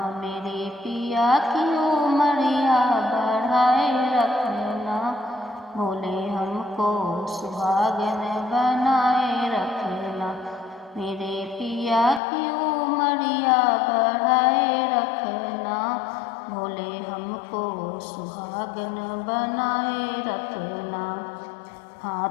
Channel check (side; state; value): right; drops out; at 12.2 s